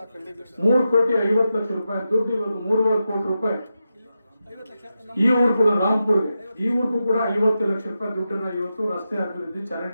3 ಕೋಟಿ 50 ಲಕ್ಷ ರೂಪಾಯಿ ದುಡ್ಡು ಇವತ್ತು 3.5 ಕೋಟಿ ರೂಪಾಯಿ ಈ ಊರು ಕೂಡ ರಾಮ್ಪುರ್ಗೆ, ಈ ಊರಿಗೂ ಕೂಡ 50 ಲಕ್ಷ ರೂಪಾಯಿ ದುಡ್ಡನ್ನ ಇವತ್ತು ರಸ್ತೆ ಅಭಿವೃದ್ಧಿ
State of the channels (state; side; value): inverted; both; correlation -0.89